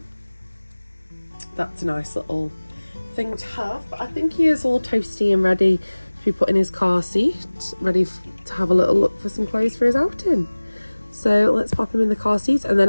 that's a nice little thing to have. But I think he is all toasty and ready to be put in his car seat, ready to have a little look for some clothes for his outing. So let's pop him in the car seat, and then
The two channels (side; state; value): both; inverted; correlation -1.00